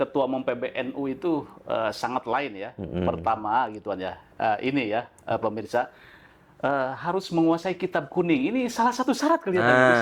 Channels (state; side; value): identical; both; correlation 1.00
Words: umum PBNU itu sangat lain ya. Pertama gituan ya, ini ya pemirsa. Harus menguasai kitab kuning. Ini salah satu syarat kelihatannya Gus